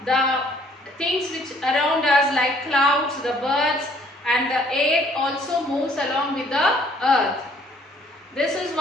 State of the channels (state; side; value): normal; both; correlation 0.61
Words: the things which around us like clouds, the birds and the air also moves along with the earth. This is